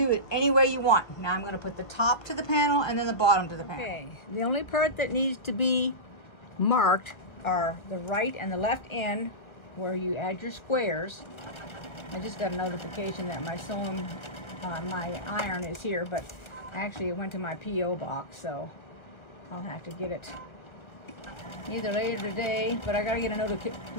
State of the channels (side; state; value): right; late; 1.6 ms